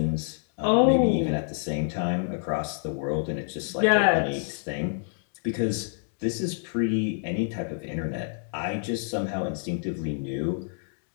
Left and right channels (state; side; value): silent; right; digital silence